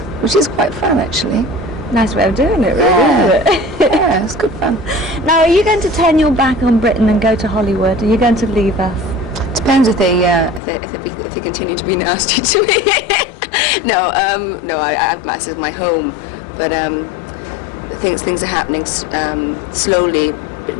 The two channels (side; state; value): right; drops out; at 10.6 s